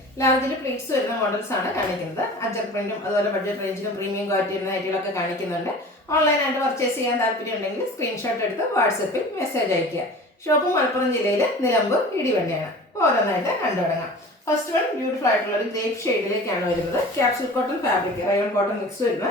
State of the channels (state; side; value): normal; both; correlation 0.40